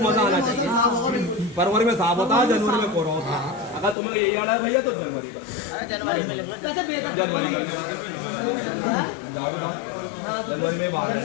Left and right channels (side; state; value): right; drops out; at 4.0 s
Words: मजा आना चाहिए। फरवरी में साफ होता है, जनवरी में कोहरा होता है। अगर तुम्हें यही आड़ा है भैया तो जनवरी का, वैसे बेहतर जनवरी में बाहर है।